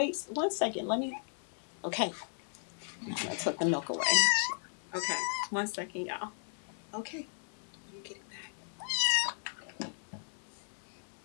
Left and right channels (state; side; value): silent; right; 54 dB below the other